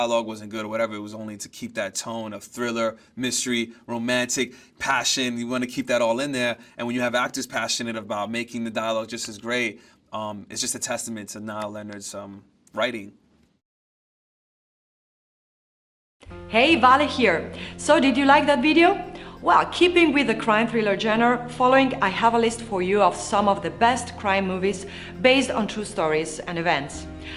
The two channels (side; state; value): both; identical; correlation 1.00